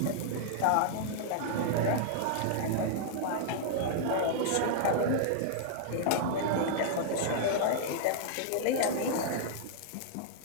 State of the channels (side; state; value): both; different; correlation -0.01